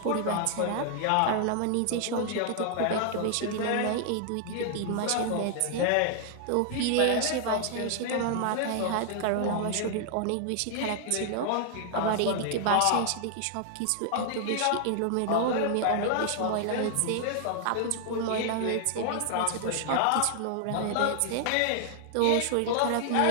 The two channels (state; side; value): different; both; correlation 0.00